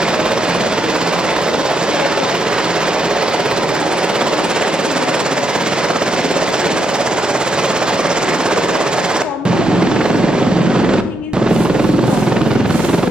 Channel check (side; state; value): both; normal; correlation 0.80